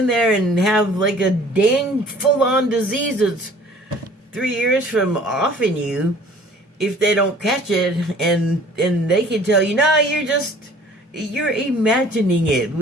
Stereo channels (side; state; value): both; normal; correlation 0.51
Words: there and have like a dang full-on disease that's 3 years from offing you if they don't catch it, and they can tell you, no, you're imagining it,